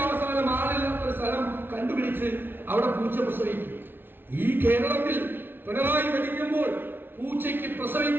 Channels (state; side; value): late; left; 0.10 ms